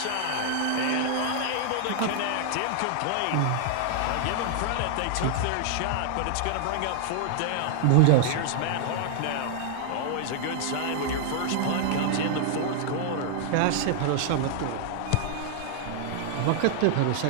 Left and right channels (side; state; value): both; different; correlation 0.00